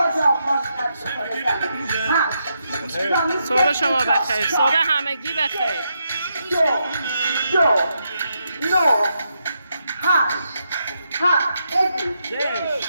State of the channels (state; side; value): inverted; both; correlation -0.82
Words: پاشنه صبح شما بخیر، صبح همگی بخیر. 2 9 8